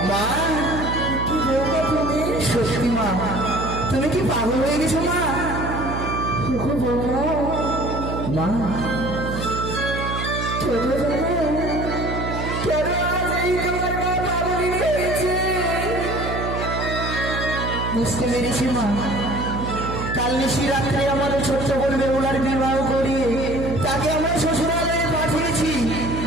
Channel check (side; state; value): right; noise; hum, 4 dB below the sound